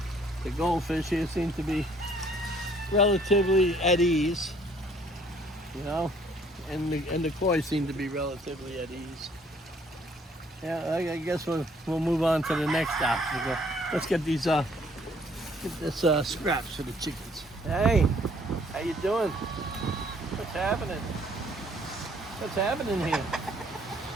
the goldfish here seem to be relatively at ease, and the koi seem to be relatively at ease. Yeah, I guess we'll move on to the next obstacle. Let's get these scraps for the chickens. Hey, how you doing? What's happening? What's happening here?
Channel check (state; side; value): normal; both; correlation 0.61